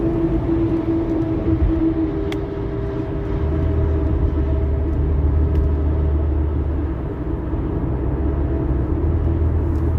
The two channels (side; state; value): both; identical; correlation 1.00